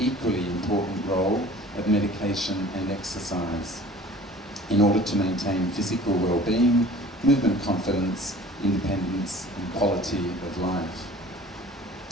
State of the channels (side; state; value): both; normal; correlation 0.46